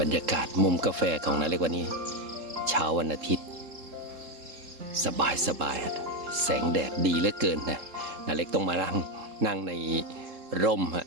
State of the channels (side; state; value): left; late; 3.7 ms